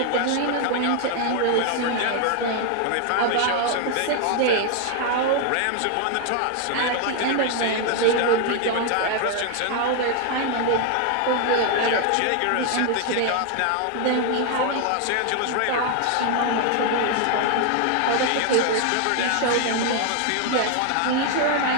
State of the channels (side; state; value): both; different; correlation 0.00